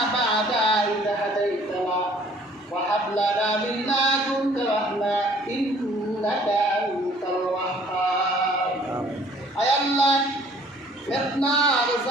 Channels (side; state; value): both; normal; correlation 0.57